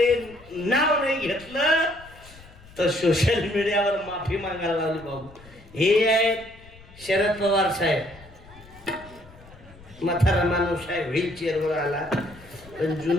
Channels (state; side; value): noise; left; rumble, 22 dB below the sound